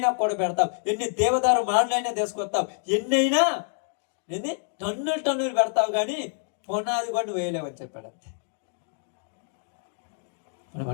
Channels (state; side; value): silent; right; digital silence